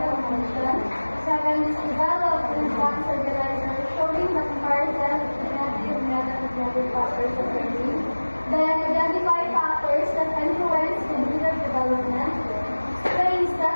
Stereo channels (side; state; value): both; inverted; correlation -1.00